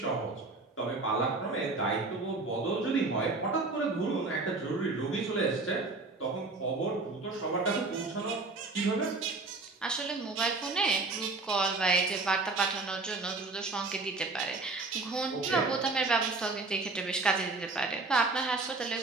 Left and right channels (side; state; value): left; quieter; 3.5 dB